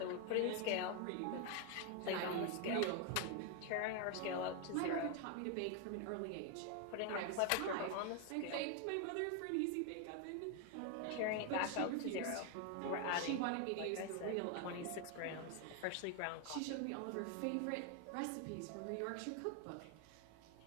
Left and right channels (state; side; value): different; both; correlation 0.01